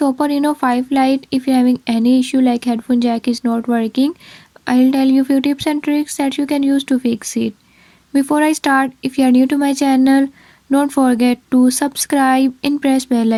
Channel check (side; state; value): both; identical; correlation 1.00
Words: Oppo Reno 5 Lite, if you're having any issue like headphone jack is not working, I'll tell you few tips and tricks that you can use to fix it. Before I start, if you are new to my channel, don't forget to subscribe and press bell